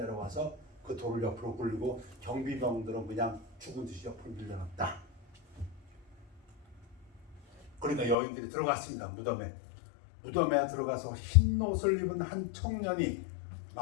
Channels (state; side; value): drops out; right; at 8.2 s